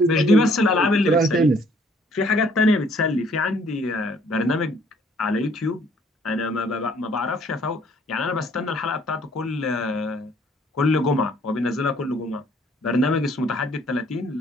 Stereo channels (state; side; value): normal; both; correlation 0.61